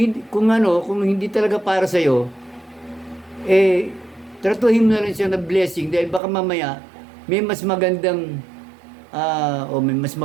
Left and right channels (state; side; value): drops out; left; at 6.2 s